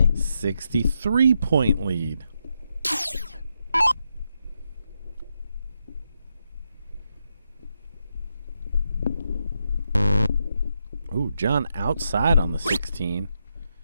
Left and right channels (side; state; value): both; inverted; correlation -0.82